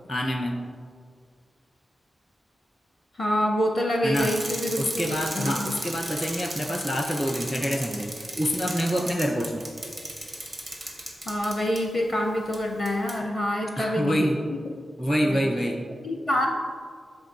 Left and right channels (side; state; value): both; normal; correlation 0.90